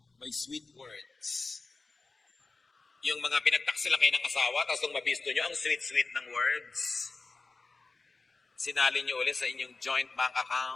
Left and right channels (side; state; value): right; quieter; 3.9 dB